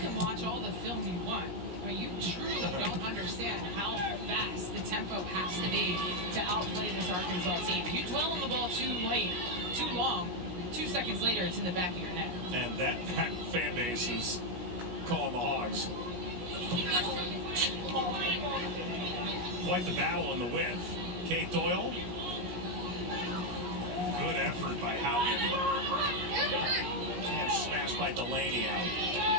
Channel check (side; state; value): left; late; 17 ms